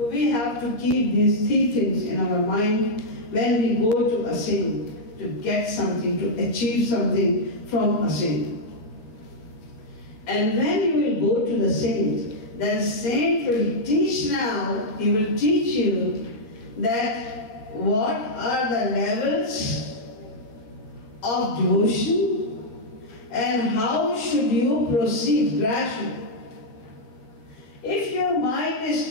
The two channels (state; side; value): late; right; 13 ms